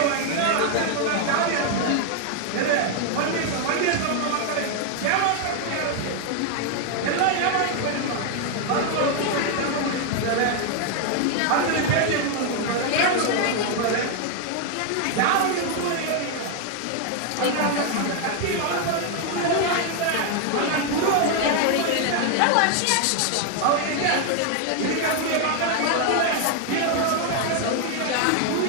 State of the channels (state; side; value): different; both; correlation 0.00